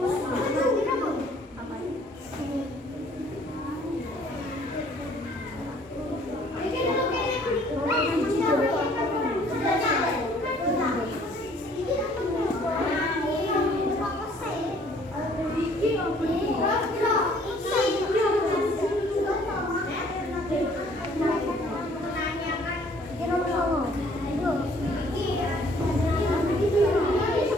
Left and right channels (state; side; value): normal; both; correlation 0.59